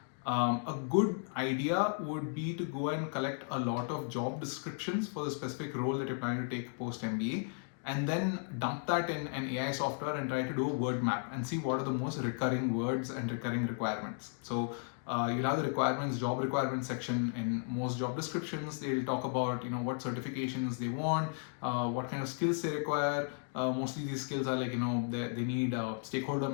A good idea would be to go and collect a lot of job descriptions for the specific role that you're planning to take post MBA, and then dump that in an AI software and try to do a word map and see what are the most recurring words and recurring requirements. So you'll have the job requirements section in most job descriptions. They'll talk about what certifications they want, what kind of skills they require. Mostly these skills are like they need stakeholder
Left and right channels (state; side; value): silent; right; 55 dB below the other